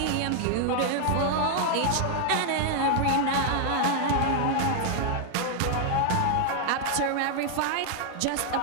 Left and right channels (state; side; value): different; both; correlation 0.00